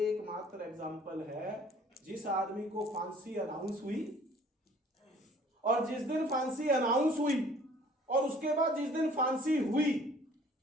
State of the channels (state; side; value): normal; both; correlation 0.54